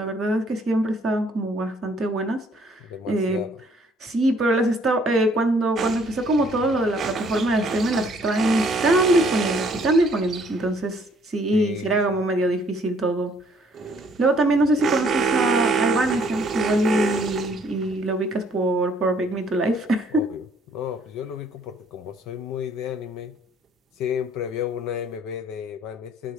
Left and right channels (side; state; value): both; normal; correlation 0.62